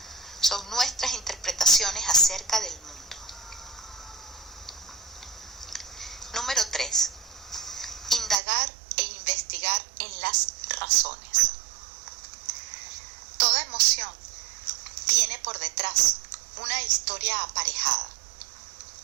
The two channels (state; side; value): drops out; left; at 8.3 s